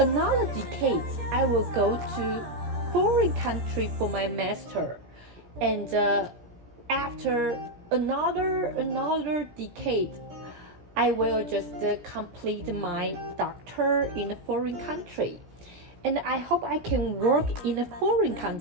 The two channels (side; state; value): left; late; 17 ms